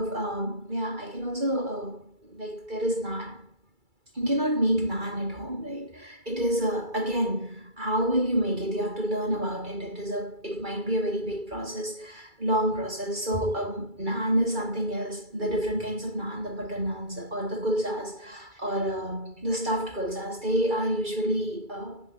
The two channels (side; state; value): left; late; 2.3 ms